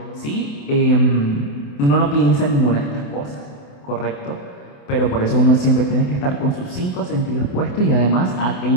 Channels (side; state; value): right; late; 28 ms